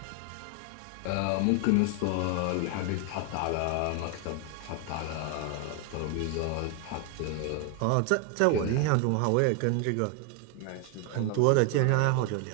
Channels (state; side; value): different; both; correlation 0.01